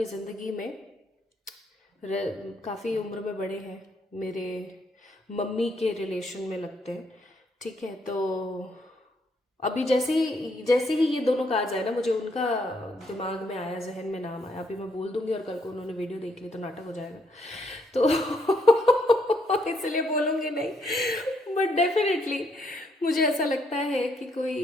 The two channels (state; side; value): normal; both; correlation 0.73